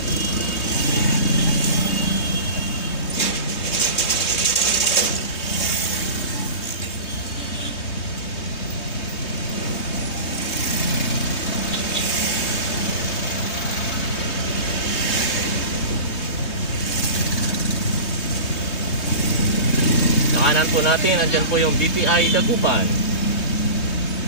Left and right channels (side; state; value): right; late; 3.2 ms